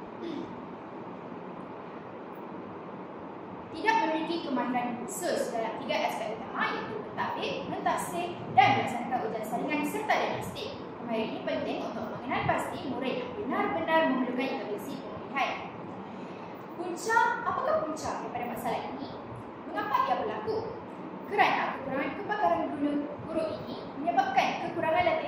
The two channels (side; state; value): both; identical; correlation 1.00